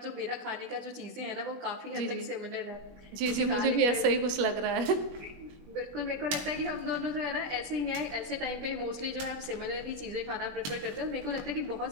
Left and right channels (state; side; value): late; left; 21 ms